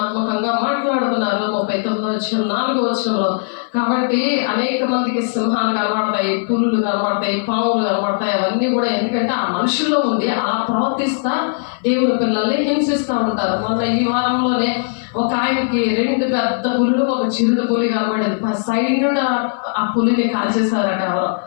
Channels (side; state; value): right; silent; 59 dB below the other